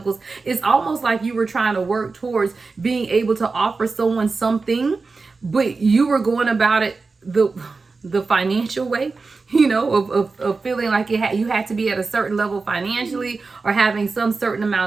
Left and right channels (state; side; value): quieter; left; 4.1 dB